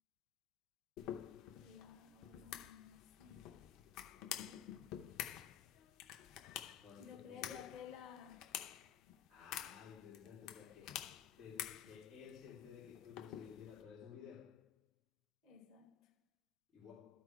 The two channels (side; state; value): right; quieter; 10.0 dB